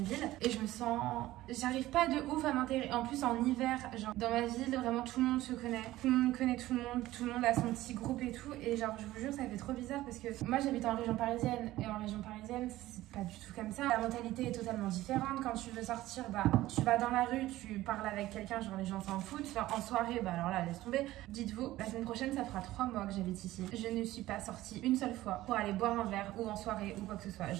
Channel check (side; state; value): left; quieter; 16.1 dB